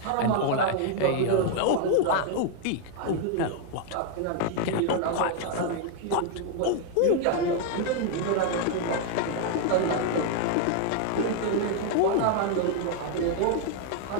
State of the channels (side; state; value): both; different; correlation 0.00